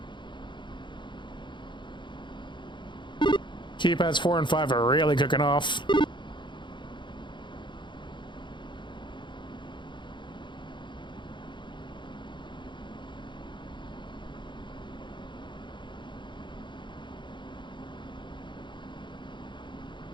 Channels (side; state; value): right; late; 0.23 ms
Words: Keypads 4 and 5 are really cooking off.